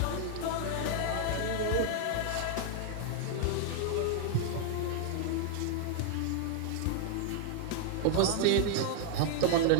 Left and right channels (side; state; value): both; different; correlation 0.00